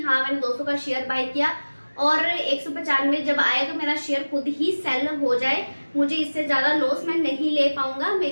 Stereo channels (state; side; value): inverted; both; correlation -1.00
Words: हाँ मैंने 200 का शेयर बाय किया और 195 जब आए तो मेरा शेयर खुद ही सेल हो जाए, मुझे इससे ज्यादा लॉस मैं नहीं ले पाऊंगा,